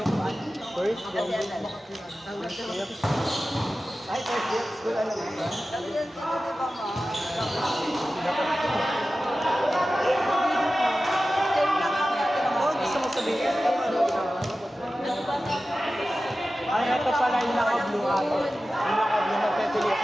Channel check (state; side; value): normal; both; correlation 0.95